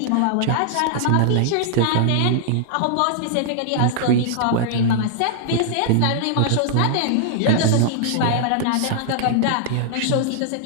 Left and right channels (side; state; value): both; different; correlation -0.01